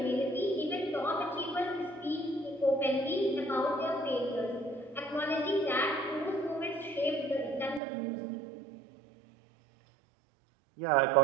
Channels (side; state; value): left; drops out; at 7.8 s